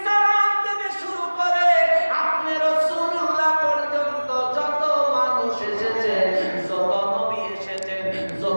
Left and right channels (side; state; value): both; inverted; correlation -1.00